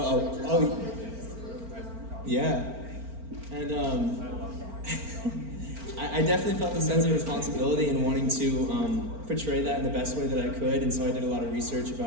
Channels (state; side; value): late; left; 4.4 ms